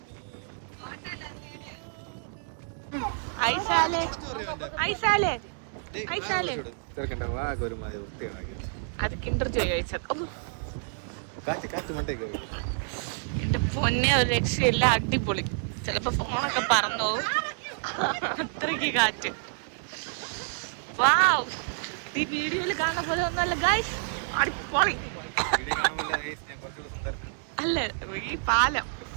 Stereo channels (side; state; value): left; silent; digital silence